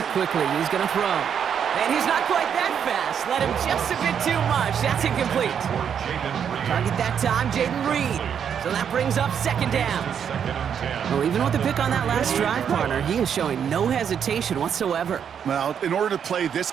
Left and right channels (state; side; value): quieter; left; 8.0 dB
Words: quickly. He's going to throw. And he's not quite that fast. Let him just a bit too much. That's incomplete. Target that time, Jaden Reed. So that brings up 2nd down. Well, even with the pick on that last drive, partner, he is showing no hesitation whatsoever. Well, in order to play this